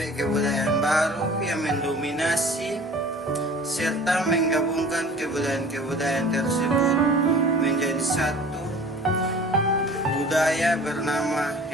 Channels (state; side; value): normal; both; correlation 0.45